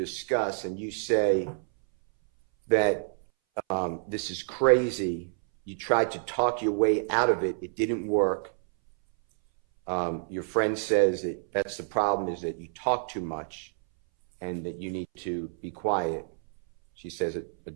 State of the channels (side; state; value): left; silent; 59 dB below the other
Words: and you say that this is crazy, you tried to talk your way out of it, it didn't work. Your friend says that that's the problem, is that you talk too much and that you need to be quiet. She says it a